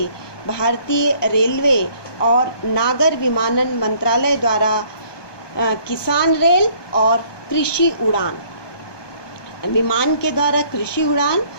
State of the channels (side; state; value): right; late; 1.2 ms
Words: भारतीय रेलवे और नागर विमानन मंत्रालय द्वारा किसान रेल और कृषि उड़ान। विमान के द्वारा कृषि उड़ान